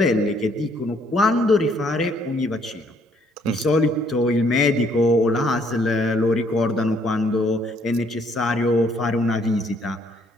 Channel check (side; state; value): both; normal; correlation 0.66